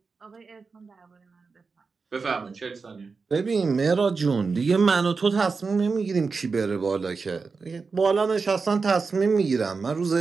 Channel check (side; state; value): left; quieter; 4.7 dB